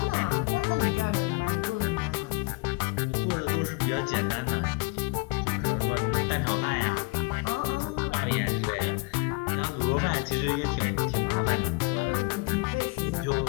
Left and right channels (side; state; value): right; quieter; 28.3 dB